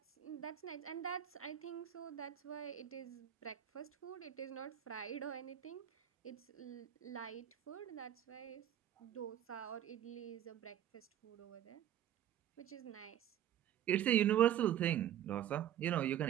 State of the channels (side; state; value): left; quieter; 11.1 dB